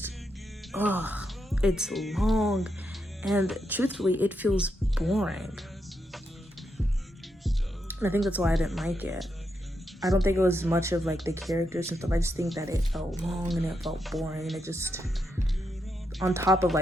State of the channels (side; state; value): both; normal; correlation 0.82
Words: it's long, and truthfully, it feels boring. And I think that's why I didn't like it. I don't think it was much of like the characters and stuff. I just think that it felt long and it felt boring. And it just, on top of